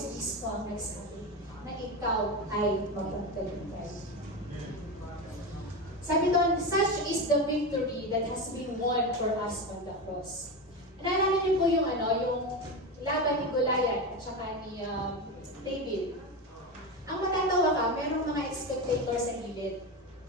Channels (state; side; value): normal; both; correlation 0.19